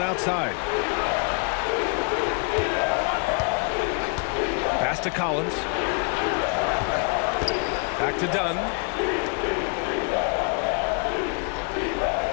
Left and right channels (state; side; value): quieter; right; 37.2 dB